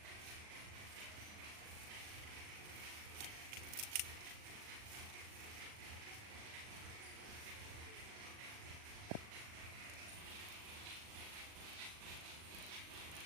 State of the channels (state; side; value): late; left; 39 ms